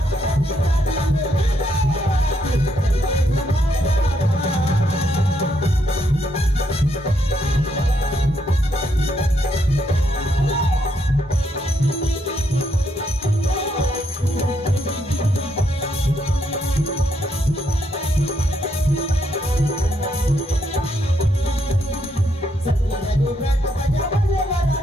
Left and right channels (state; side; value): normal; both; correlation 0.76